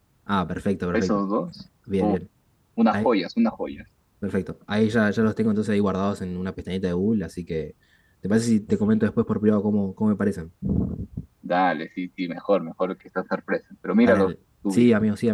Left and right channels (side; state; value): both; identical; correlation 1.00